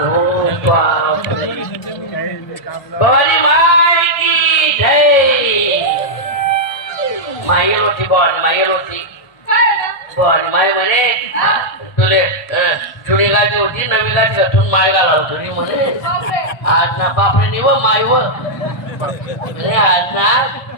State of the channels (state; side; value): late; right; 1.3 ms